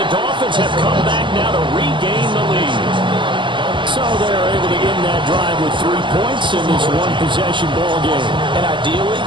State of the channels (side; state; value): left; late; 0.23 ms